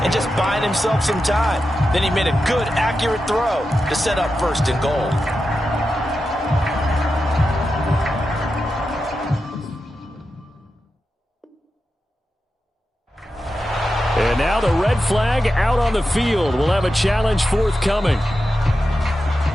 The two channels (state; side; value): normal; both; correlation 0.90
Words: and just buying himself some time. Then he made a good, accurate throw to set up 1st and goal. And now the red flag out on the field. We'll have a challenge forthcoming.